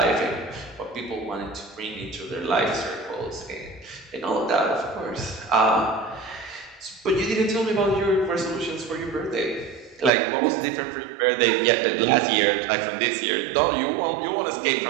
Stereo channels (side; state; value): left; drops out; at 10.1 s